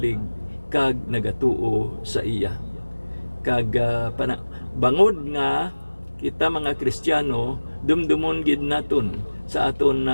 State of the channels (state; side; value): inverted; both; correlation -1.00